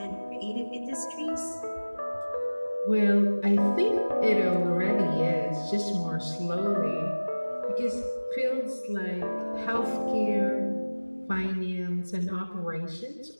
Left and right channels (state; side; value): inverted; both; correlation -1.00